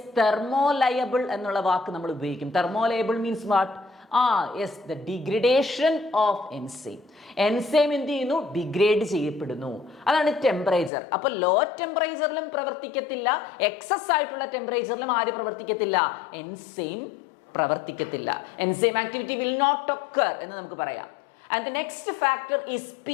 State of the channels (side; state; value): right; drops out; at 10.9 s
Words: തെർമോലയബിൾ എന്നുള്ള വാക്ക് നമ്മൾ ഉപയോഗിക്കും. Thermolabile means what? Yes, the degradation of enzyme. Enzyme എന്ത് ചെയ്യുന്നു? ഡിഗ്രേഡ് ചെയ്യപ്പെടുന്നു. അതാണ് ടെമ്പറേച്ചർ. അപ്പൊ ലോ ടെമ്പറേച്ചറിലും പ്രവർത്തിക്കത്തില്ല, എക്സസ് ആയിട്ടുള്ള ടെമ്പറേച്ചറിലും ആര് പ്രവർത്തിക്കത്തില്ല? എൻസൈം പ്രവർത്തിക്കത്തില്ല. Enzyme activity will not occur എന്ന് നമുക്ക് പറയാം. And the next factor is